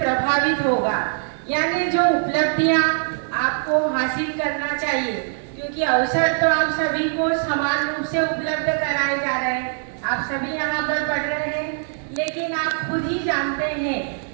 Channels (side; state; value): left; silent; 64 dB below the other